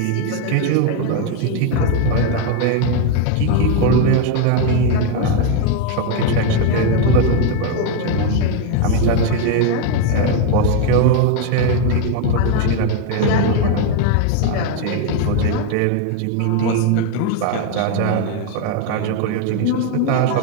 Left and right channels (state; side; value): different; both; correlation 0.01